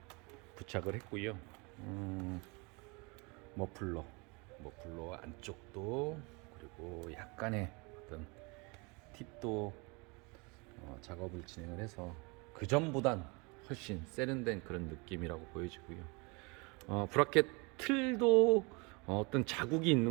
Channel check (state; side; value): quieter; left; 29.0 dB